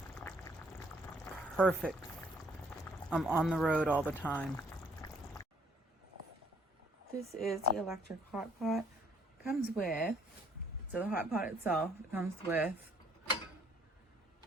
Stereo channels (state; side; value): normal; both; correlation 0.64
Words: Perfect. I'm on the road all the time. This is the electric hot pot. Comes with, so the hot pot itself, it comes with